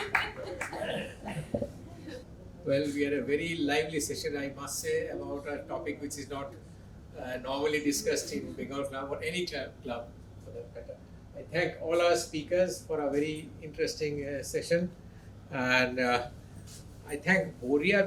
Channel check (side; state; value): both; identical; correlation 1.00